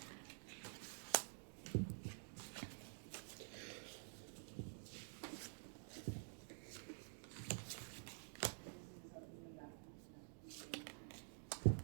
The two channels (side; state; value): left; silent; digital silence